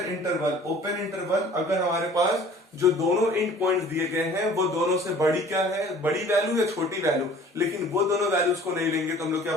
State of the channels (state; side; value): normal; both; correlation 0.49